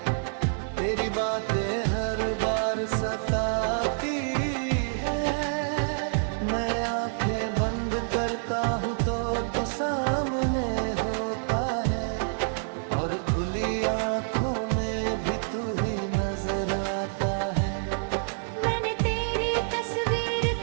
तेरी बातें हर बार सताती है। मैं आंखें बंद करता हूँ तो तू सामने होता है और खुली आंखों में भी तू ही नजर आता है। मैंने तेरी तस्वीर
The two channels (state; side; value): silent; left; digital silence